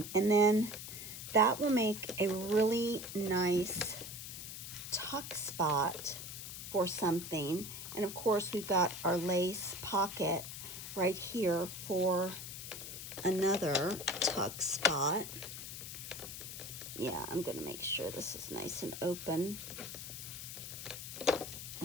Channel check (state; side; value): noise; left; hiss, 9 dB below the sound